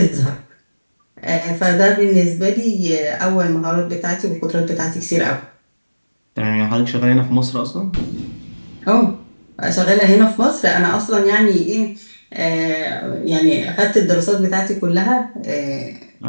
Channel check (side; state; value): both; inverted; correlation -1.00